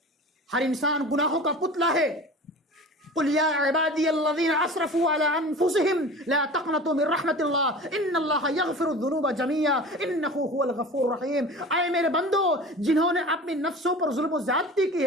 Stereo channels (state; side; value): normal; both; correlation 0.37